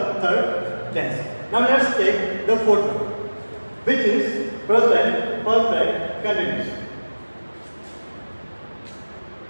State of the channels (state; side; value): inverted; both; correlation -1.00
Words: third tense. Now let's take the fourth one, which is present perfect continuous.